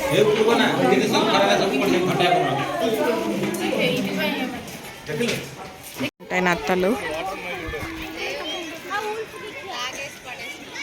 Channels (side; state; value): both; identical; correlation 1.00